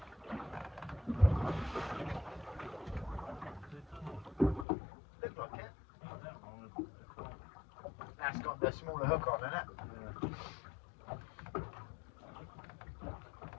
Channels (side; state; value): right; drops out; at 4.7 s